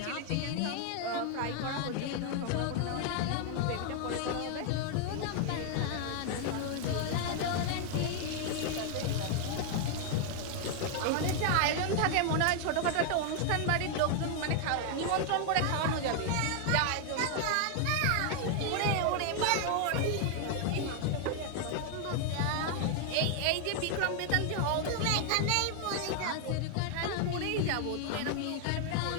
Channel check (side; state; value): both; different; correlation 0.00